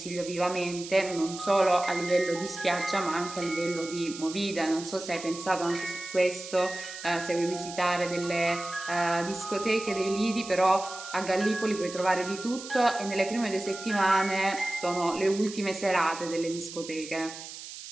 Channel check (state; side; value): noise; right; hiss, 12 dB below the sound